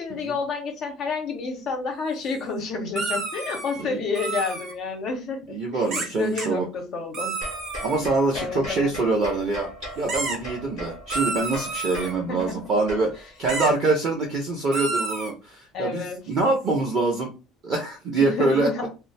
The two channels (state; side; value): normal; both; correlation 0.54